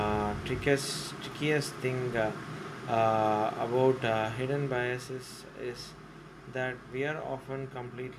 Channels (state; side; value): identical; both; correlation 1.00